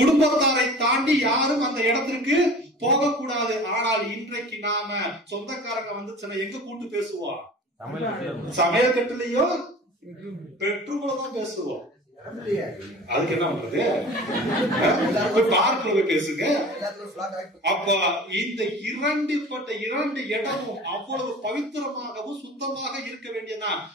தாண்டி யாரும் அந்த இடத்திற்கு போகக்கூடாது. ஆனால் இன்றைக்கு நாம சொந்தக்காரங்க வந்துச்சுன்னா எங்க கூட்டு பேசுவோம்? சமையல் கட்டுலயோ பெட்ரூம்லதான் பேசுவோம். அதுக்கு என்ன பண்றது? பார்க்கல போய் பேசுங்க. அப்ப இந்த 2 இடமும் அவ்வளவு பவித்திரமாகவும் சுத்தமாக இருக்க வேண்டியதா.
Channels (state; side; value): normal; both; correlation 0.40